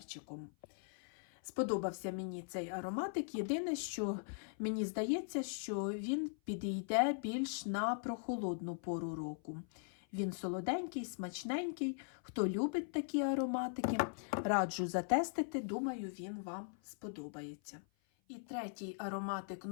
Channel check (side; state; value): right; silent; 51 dB below the other